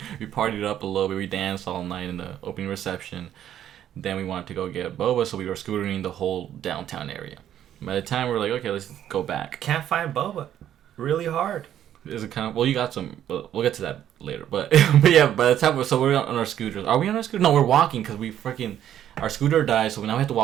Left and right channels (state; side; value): quieter; left; 10.8 dB